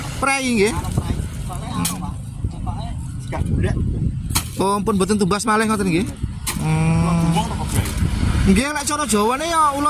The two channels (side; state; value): both; identical; correlation 1.00